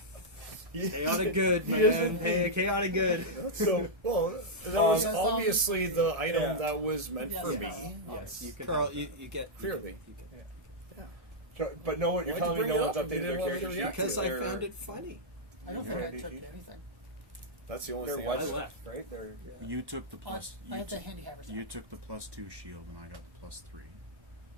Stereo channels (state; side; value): late; left; 1.7 ms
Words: Chaotic good, He is man. indeed. Hey, chaotic good. So, well, that was Um, obviously the item yeah. that was meant Yes, for yes. me. Yes, you can. Carl, you get Clearly. So, but no one, you're Why'd you telling me bring no it one's up? You updated didn't their want me to character sheet? react because I They're- found it funny. I don't think Right. I took anything. That's the only They're thing what's I got. left, right? They're You took the I plus. I You, had the took, handy haver stuff. you took the +2 shield, and I got the +3.